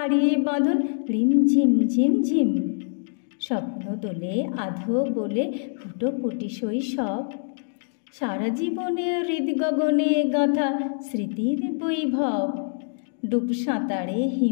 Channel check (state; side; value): silent; right; digital silence